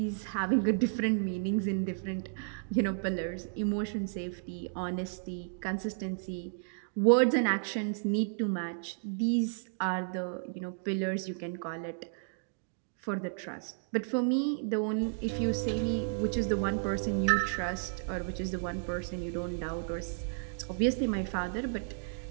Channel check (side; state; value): left; silent; digital silence